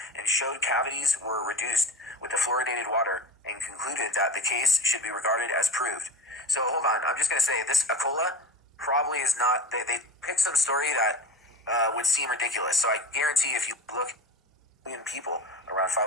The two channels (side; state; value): both; normal; correlation 0.32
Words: and showed cavities were reduced with the fluoridated water and concluded that the case should be regarded as proved. So hold on, I'm just going to say this Acola probably is not, they picked some story that would seem ridiculous. So I guarantee if you look at people, around